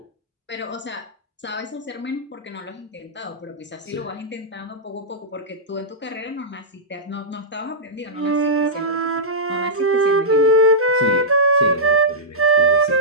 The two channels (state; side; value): normal; both; correlation -0.13